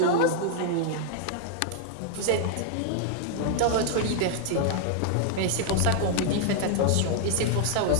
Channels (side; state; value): both; different; correlation 0.00